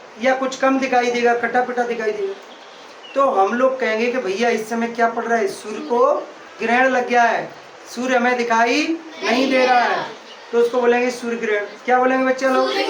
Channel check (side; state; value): both; identical; correlation 1.00